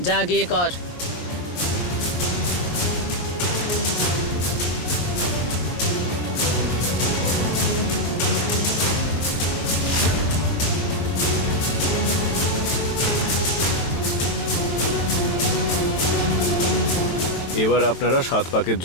যা গিয়ে কর। এবার আপনারা 7 পাকের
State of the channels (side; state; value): right; late; 23 ms